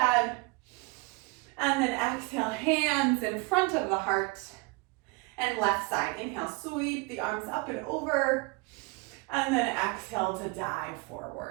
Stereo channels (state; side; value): quieter; left; 27.0 dB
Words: And then exhale, hands in front of the heart. And left side. Inhale, sweep the arms up and over. And then exhale to dive